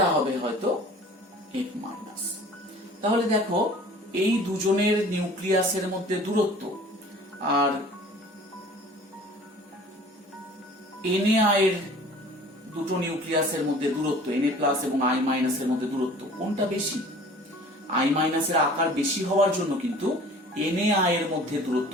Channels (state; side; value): normal; both; correlation 0.47